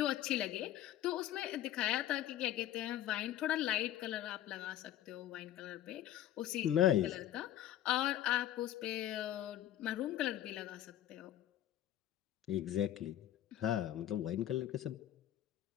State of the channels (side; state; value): right; quieter; 12.5 dB